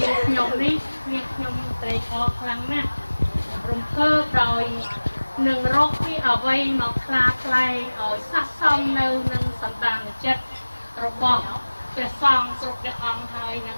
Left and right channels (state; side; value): inverted; both; correlation -1.00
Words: ាងខ្ញុំនេះនាងខ្ញុំត្រេកអរខ្លាំងណាស់រំភើបដោយនឹងរកពីអ្វីមកខ្លាថ្លែងឲ្យស័ក្តិសមនៅនឹងសន្តានចិត្តរបស់ព្រះសង្ឃគ្រប់ព្រះអង្គហើយនឹង